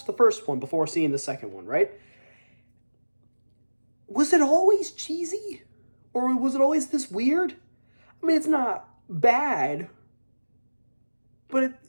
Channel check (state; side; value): inverted; both; correlation -1.00